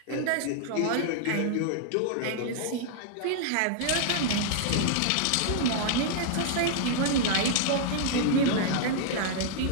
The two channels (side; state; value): both; different; correlation -0.01